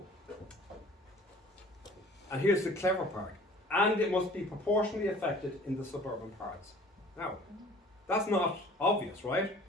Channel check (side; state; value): both; normal; correlation 0.49